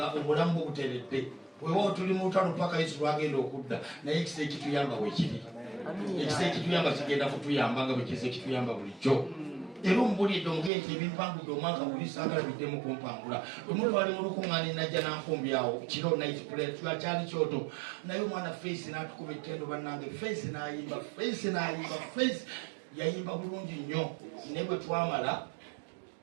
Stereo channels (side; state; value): left; drops out; at 10.7 s